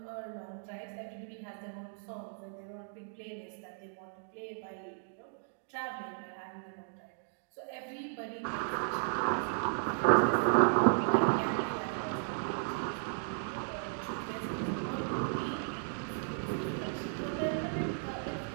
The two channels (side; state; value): left; silent; digital silence